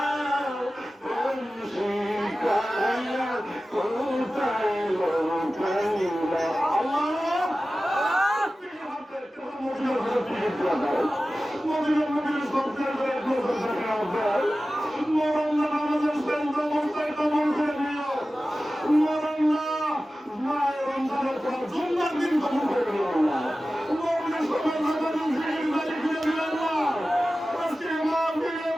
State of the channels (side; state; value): both; normal; correlation 0.95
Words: প্রেম শিখায় কোথায় লুকাইলা। আল্লাহ মদিনা নবীর সবচেয়ে করে নজর দেখা যায়, মরল্লা নামাজের সেন্দ্র অবস্থায় কবল করে নিও, মরল্লা মায়ের রমজানের পর জুম্মার দিন কবল করে নিও আল্লাহ, মরলের সময় নামাজের জিকির বাড়ি ফিরে দিও আল্লাহ। আজকে মাহফিলে